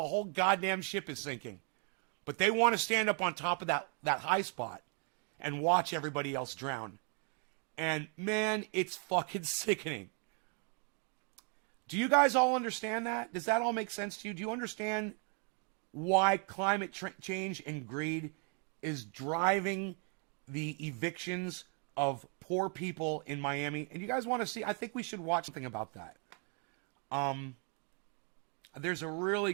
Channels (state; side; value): quieter; left; 39.9 dB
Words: whole goddamn ship is sinking. But they want to stand up on top of that high spot and watch everybody else drown. And man, it's fucking sickening. Do you guys all understand that? Does that all make sense to you? Do you understand why climate change and greed is driving the evictions of poor people in Miami? And you guys want to see, I think we should watch something about that. There's a really